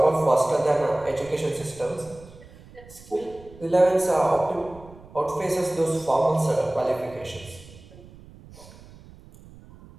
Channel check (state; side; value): noise; right; rumble, 21 dB below the sound